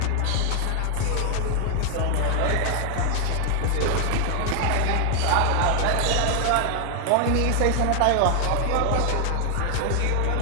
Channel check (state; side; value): different; both; correlation 0.00